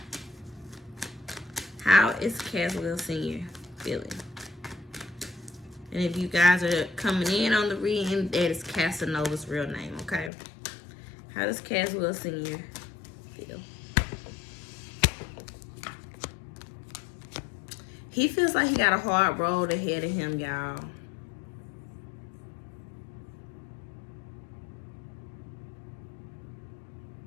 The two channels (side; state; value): right; drops out; at 10.3 s